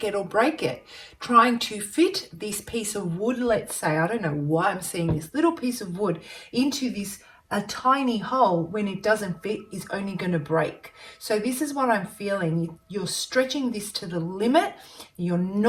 it or break it. Trying to fit this piece of wood, let's say, I don't know why I'm seeing this little piece of wood into this a tiny hole, when it doesn't fit, is only going to break. So this is what I'm feeling. You're stretching this to the limit. You're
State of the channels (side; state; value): both; identical; correlation 1.00